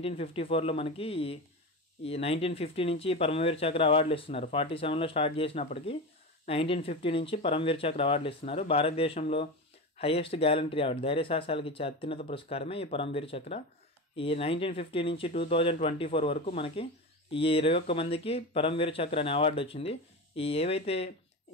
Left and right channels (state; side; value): normal; both; correlation 0.23